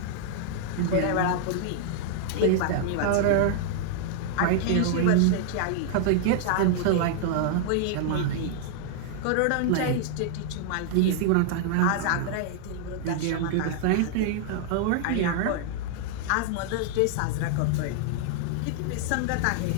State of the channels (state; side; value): different; both; correlation -0.01